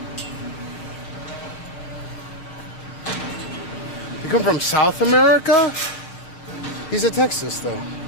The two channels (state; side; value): late; right; 6.2 ms